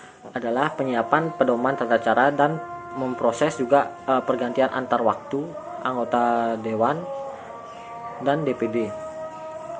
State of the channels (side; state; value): both; identical; correlation 1.00